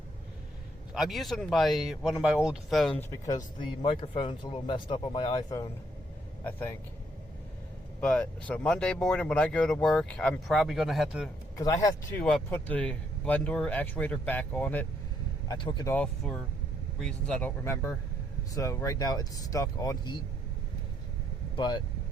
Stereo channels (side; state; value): both; normal; correlation 0.71